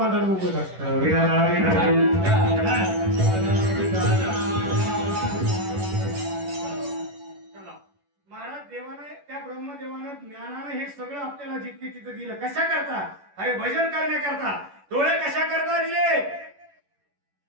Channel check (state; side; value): late; left; 11 ms